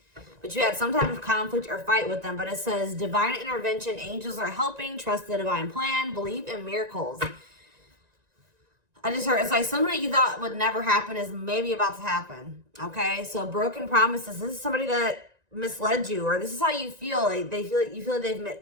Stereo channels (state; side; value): late; left; 1.9 ms